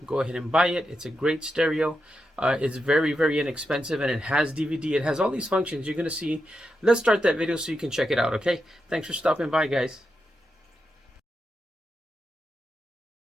go ahead and buy it. It's a great stereo. It's very inexpensive, and it has DVD. It has all these functions you're going to see. Let's start that video so you can check it out, okay? Thanks for stopping by, guys.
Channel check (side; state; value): both; normal; correlation 0.87